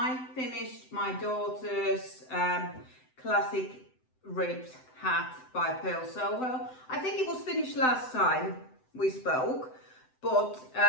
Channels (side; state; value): right; late; 7.8 ms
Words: finished my daughter's classic ribbed hat by Pearl Soho. I think it was finished last time we spoke, but